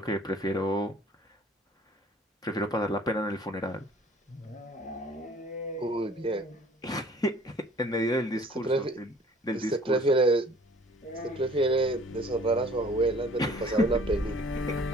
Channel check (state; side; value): normal; both; correlation 0.53